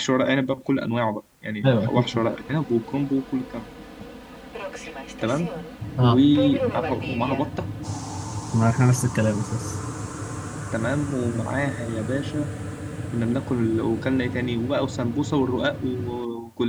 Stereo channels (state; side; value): identical; both; correlation 1.00